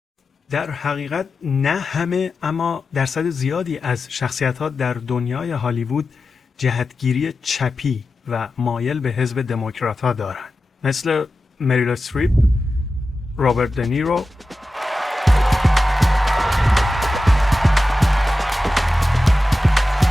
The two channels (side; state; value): both; normal; correlation 0.93